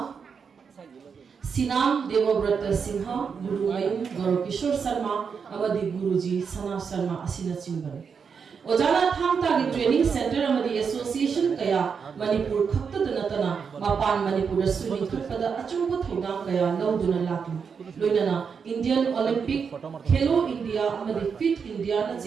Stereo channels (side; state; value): left; quieter; 6.2 dB